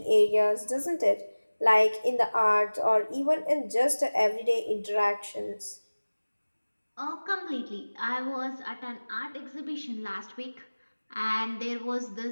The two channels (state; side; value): inverted; both; correlation -1.00